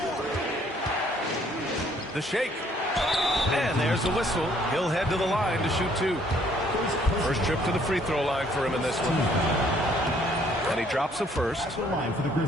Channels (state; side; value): normal; both; correlation 0.63